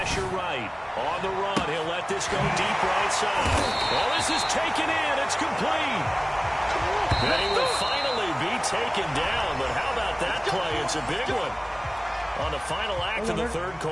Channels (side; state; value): both; identical; correlation 1.00